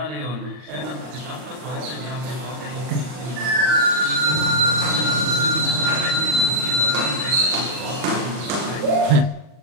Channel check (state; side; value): late; left; 40 ms